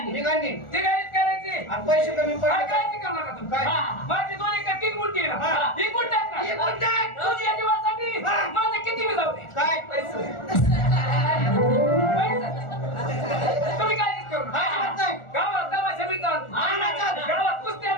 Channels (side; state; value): right; late; 1.4 ms